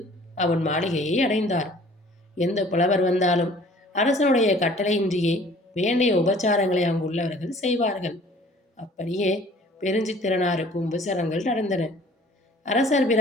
அவன் மாளிகையை அடைந்தார். எந்த புலவர் வந்தாலும் அரசனுடைய கட்டளையின்றியே வேண்டிய உபச்சாரங்களை அங்குள்ளவர்கள் செய்வார்கள். அப்படியே பெருஞ்சித்திரனாருக்கு உபசாரங்கள் நடந்தன. அரசர்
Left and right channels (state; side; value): normal; both; correlation 0.52